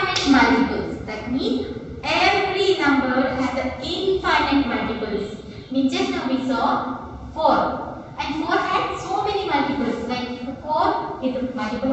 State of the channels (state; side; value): identical; both; correlation 1.00